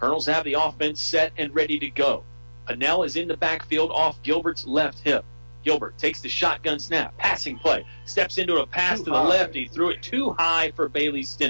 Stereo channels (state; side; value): inverted; both; correlation -1.00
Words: have the offense set and ready to go. Hoehne is in the backfield off Gilbert's left hip. Gilbert takes the shotgun snap, passing play, steps into a pass to the left. He threw it too high for Bailey